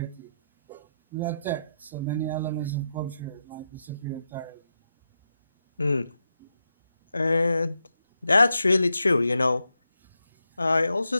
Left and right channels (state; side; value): inverted; both; correlation -0.85